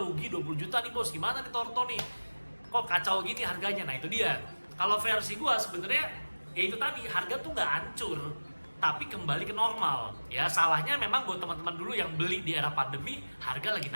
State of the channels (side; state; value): both; inverted; correlation -1.00